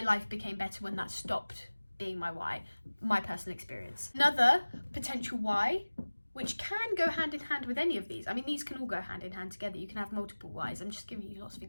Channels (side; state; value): both; inverted; correlation -1.00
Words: became better when that stopped being my why, my personal experience. Another potential why, which can go hand in hand with any of these. I mean, these can all go hand in hand together. You can have multiple whys. I'm just giving you lots of